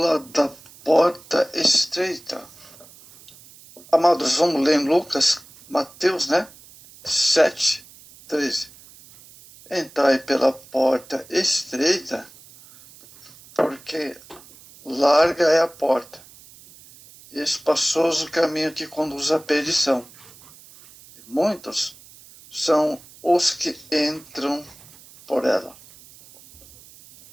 da porta estreita. Amados, vamos ler em Mateus, 7:13. Entrai pela porta estreita, porque larga é a porta, e espaçoso o caminho que conduz à perdição. E muitos são os que entram por ela.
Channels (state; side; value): noise; right; hiss, 23 dB below the sound